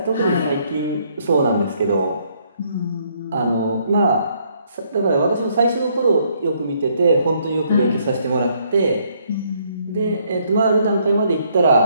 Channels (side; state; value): both; inverted; correlation -0.69